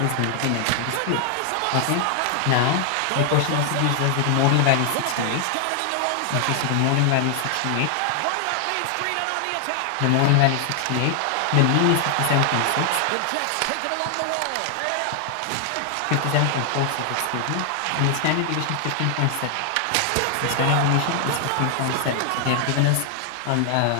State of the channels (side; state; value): both; different; correlation 0.00